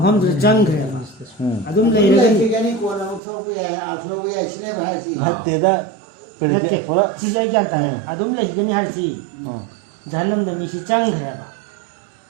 ꯆꯪꯈ꯭ꯔꯦ ꯑꯗꯨꯝ ꯂꯩꯔꯒꯅꯤ ꯀꯣꯟꯅ ꯑꯃꯨꯛ ꯊꯣꯛꯄ ꯌꯥꯏ ꯊꯣꯛꯄ ꯌꯥꯏ ꯁꯤꯅꯦꯕ ꯍꯥꯏꯁꯤ. ꯅꯠꯇꯦꯗ ꯁꯤꯁꯦ ꯑꯩ ꯒ꯭ꯌꯥꯟ ꯇꯥꯏ. ꯑꯗꯨꯝ ꯂꯩꯒꯅꯤ ꯍꯥꯏꯔꯁꯤ ꯖꯍꯟꯅꯝꯗ ꯃꯤꯁꯤ ꯆꯪꯈ꯭ꯔꯦꯕ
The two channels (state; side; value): drops out; left; at 3.2 s